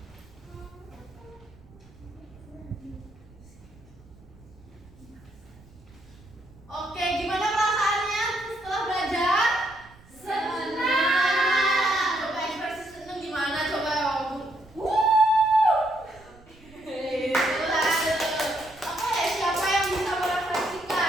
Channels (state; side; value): noise; right; rumble, 24 dB below the sound